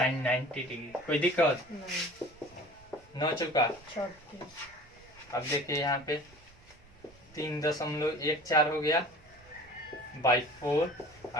90 डिग्री। कोई दिक्कत न चुका। अब देखिए यहाँ पे 3.14 हो गया बाई 4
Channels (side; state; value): right; noise; rumble, 26 dB below the sound